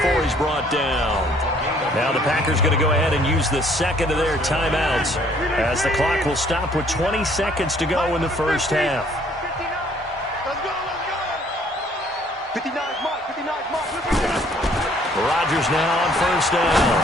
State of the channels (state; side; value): normal; both; correlation 0.61